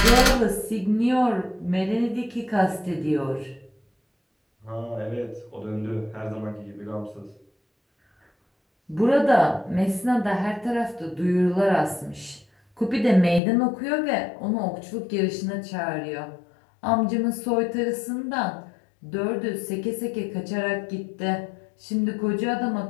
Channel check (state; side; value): drops out; right; at 13.4 s